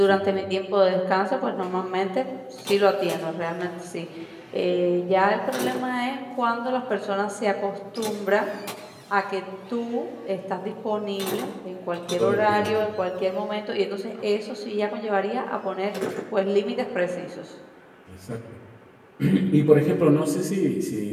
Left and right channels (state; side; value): identical; both; correlation 1.00